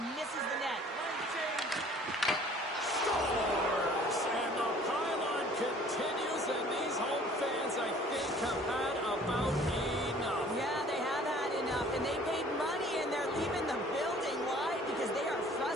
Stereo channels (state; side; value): normal; both; correlation 0.52